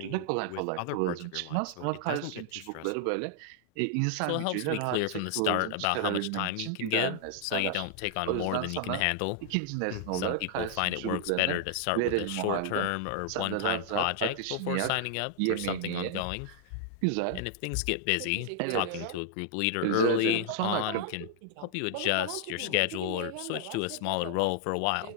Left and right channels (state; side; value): different; both; correlation 0.00